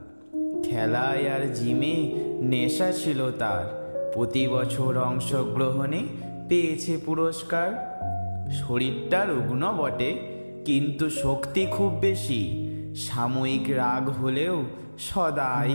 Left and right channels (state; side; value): inverted; both; correlation -1.00